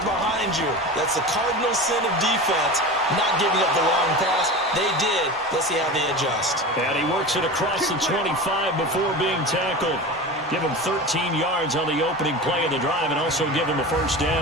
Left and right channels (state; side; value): normal; both; correlation 0.30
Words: behind you. That's the cardinal sin of defense, not giving up the long pass. They did. Let's see how they adjust. And he works it across the 25 before being tackled. Give him 13 yards on the opening play of the drive and also give him a first